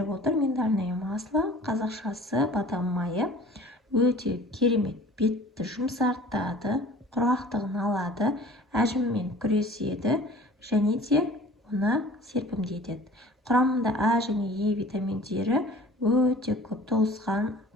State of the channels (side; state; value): both; normal; correlation 0.46